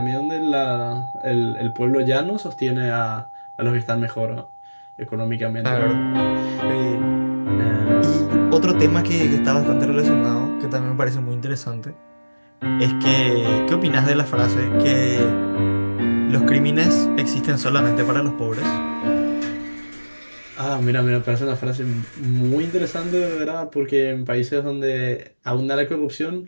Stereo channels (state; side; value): inverted; both; correlation -1.00